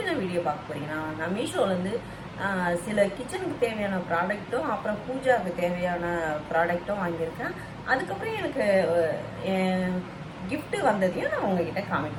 நான் video பார்க்க போகிறீங்கன்னா, நான் மீஷோலேருந்து சில கிச்சனுக்கு தேவையான ப்ராடக்ட்டும் அப்புறம் பூஜாவுக்கு தேவையான ப்ராடக்ட்டும் வாங்கியிருக்கேன். அதுக்கப்புறம் எனக்கு கிஃப்ட்டு வந்ததையும் நான் உங்ககிட்ட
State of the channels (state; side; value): identical; both; correlation 1.00